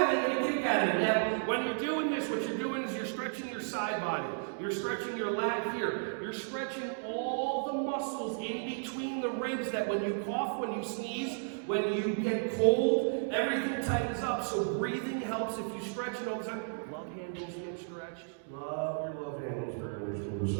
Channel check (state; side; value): silent; left; digital silence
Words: and they get a kick out of it. Now, when you're doing this, what you're doing is you're stretching your side body. You're stretching your lat here. You're stretching all the muscles in between the ribs that when you cough, when you sneeze, when you get cold, everything tightens up. So breathing helps if you stretch it all the time. Love handles get stretched. Love your love handles very much.